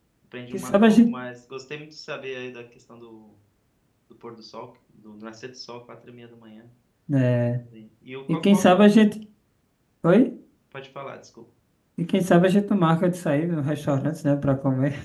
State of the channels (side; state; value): both; identical; correlation 1.00